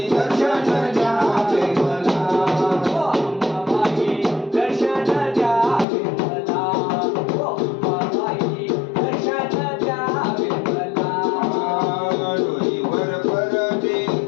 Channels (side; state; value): right; drops out; at 5.9 s